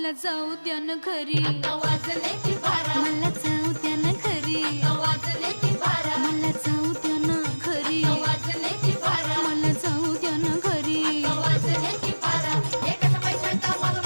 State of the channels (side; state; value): both; inverted; correlation -1.00